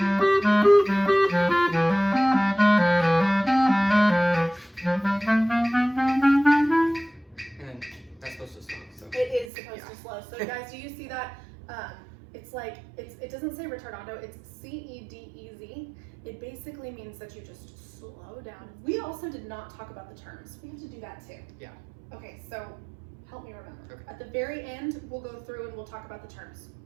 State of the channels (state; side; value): drops out; left; at 9.5 s